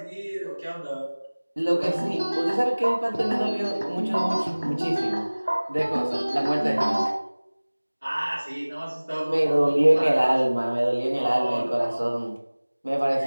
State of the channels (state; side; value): inverted; both; correlation -1.00